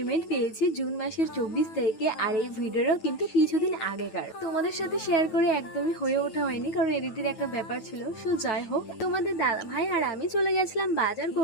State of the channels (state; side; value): late; right; 9.2 ms